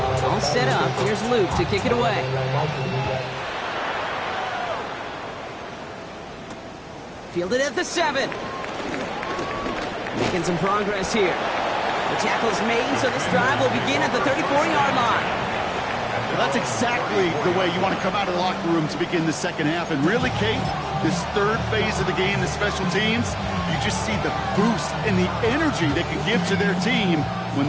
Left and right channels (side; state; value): both; identical; correlation 1.00